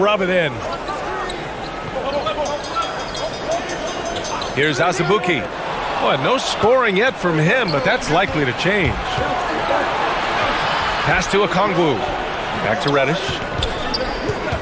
it in. Here's Azubuike. Boy, no scoring yet from him, but that's likely to change. Pass to Okongwu. Back to Reddish.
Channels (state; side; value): identical; both; correlation 1.00